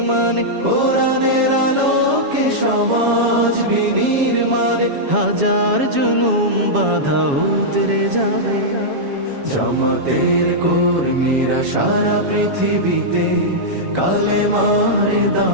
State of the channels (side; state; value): left; late; 7.2 ms